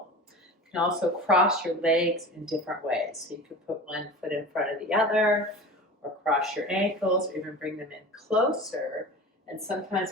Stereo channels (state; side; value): normal; both; correlation 0.35